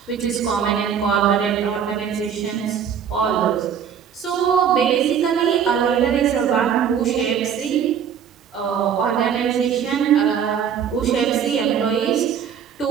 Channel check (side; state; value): left; quieter; 8.0 dB